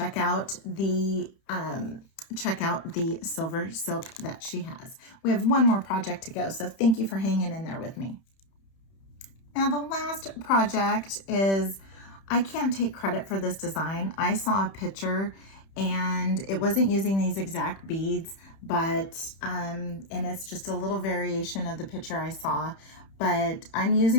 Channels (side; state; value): right; late; 31 ms